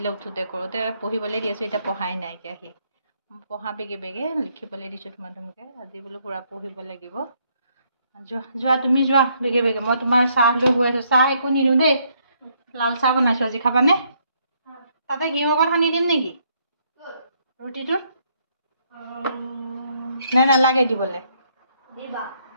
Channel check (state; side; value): inverted; both; correlation -0.71